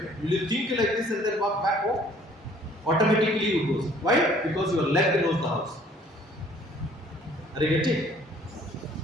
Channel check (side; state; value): both; normal; correlation 0.57